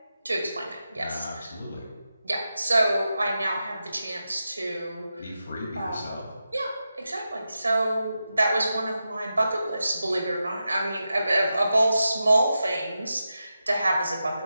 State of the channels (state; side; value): inverted; both; correlation -0.90